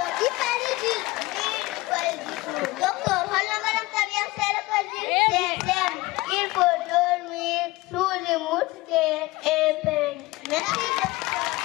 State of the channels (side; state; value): right; quieter; 20.5 dB